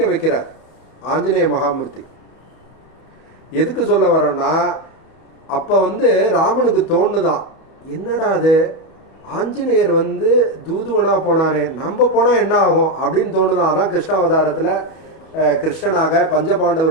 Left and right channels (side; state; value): right; late; 31 ms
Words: வைக்கிறார் ஆஞ்சநேய மகாமூர்த்தி. எதுக்கு சொல்ல வரோன்னா, அப்போ வந்து ராமனுக்கு தோணுதான், என்னடா அது ஆஞ்சநேயர் வந்து தூதுவனா போனாரே, நம்ம போனால் என்ன ஆகும் அப்படின்னு தோணுதான். அதான் கிருஷ்ணாவதாரத்தில் கிருஷ்ணனாக